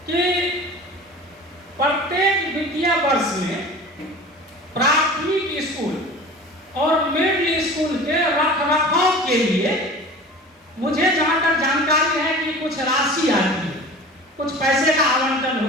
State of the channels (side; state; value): both; normal; correlation 0.39